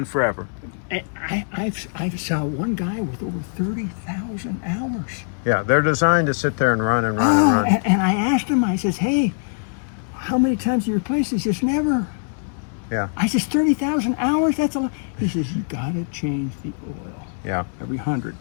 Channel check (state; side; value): silent; right; digital silence